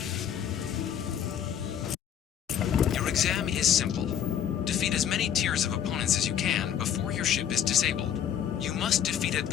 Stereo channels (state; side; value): quieter; right; 9.3 dB